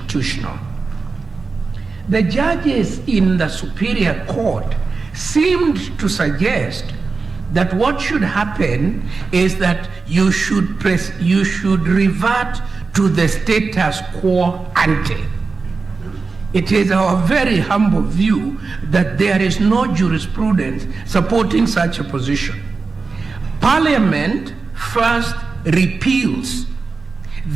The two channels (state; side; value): quieter; left; 4.3 dB